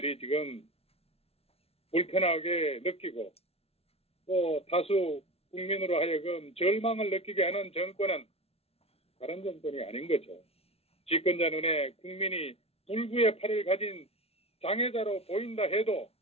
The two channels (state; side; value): late; right; 0.29 ms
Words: 지금 불편하게 느끼고 또 다수 국민으로 하여금 절망을 느끼게 하는 정권은 다른 정권이 아닌 거죠. 집권자 눈에 국민이 불구의 팔을 가진 장애자로 보인다 해도